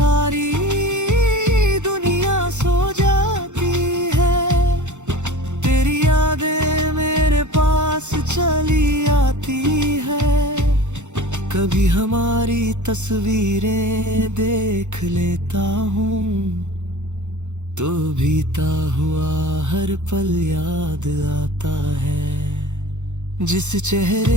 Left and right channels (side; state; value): left; late; 0.84 ms